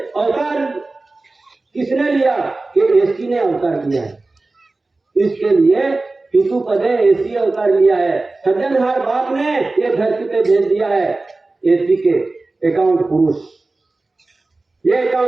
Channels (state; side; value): quieter; left; 3.3 dB